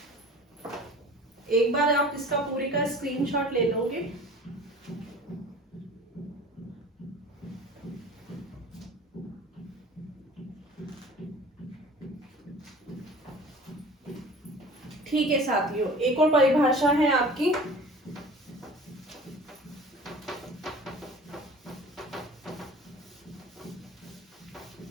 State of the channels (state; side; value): normal; both; correlation 0.44